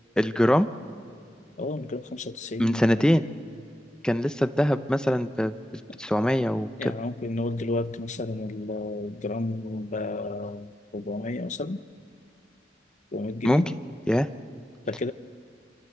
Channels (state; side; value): normal; both; correlation 0.88